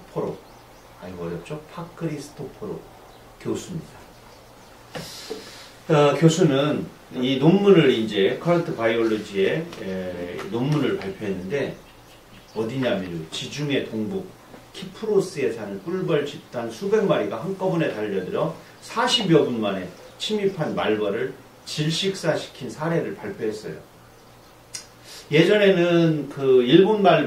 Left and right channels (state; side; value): identical; both; correlation 1.00